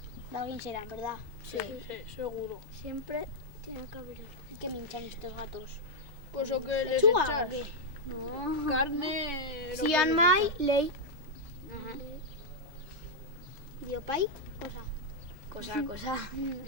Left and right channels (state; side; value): normal; both; correlation -0.03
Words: De alguien será, ¿verdad? Sí. Sí, seguro. Siempre tiene que haber. ¿Qué me hinchan estos gatos? Pues o que les ¿Lechuga echas o qué? carne... Si han mai, ley. Ajá. ¿Y Opay? Cosa. Cosa.